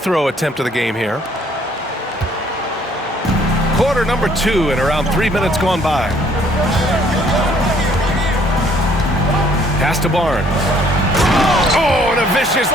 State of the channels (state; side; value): normal; both; correlation 0.62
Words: attempt of the game here. Quarter number 2 and around 3 minutes gone by. Pass to Barnes. Oh, and a vicious